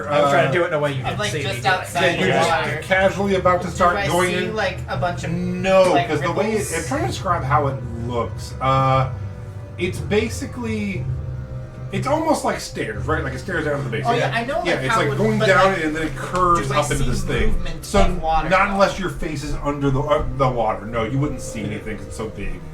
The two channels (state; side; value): identical; both; correlation 1.00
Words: I'm trying to do it in a way you I'm didn't like see just me doing. outside You're the just water. casually about to Do start I going see in. like a bunch of No, like, because the way ripples? I'm trying to describe how it looks. It's basically, it's almost like stairs, right? Like it stairs down to the base. Oh, yeah, I know, Yeah, like, it's how like it would- going but, down like, and then it curves do I up into see this thing. movement So of water, not though? unless your face is under the water. No, you wouldn't see anything 'cause it's so big.